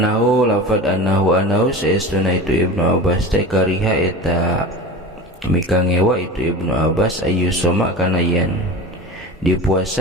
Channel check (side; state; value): both; normal; correlation 0.32